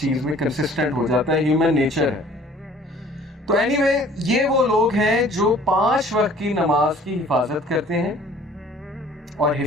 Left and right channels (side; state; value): both; normal; correlation 0.52